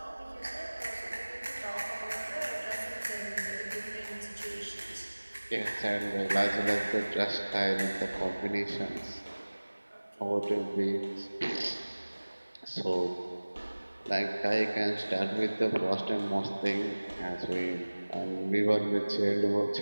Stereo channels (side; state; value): both; inverted; correlation -1.00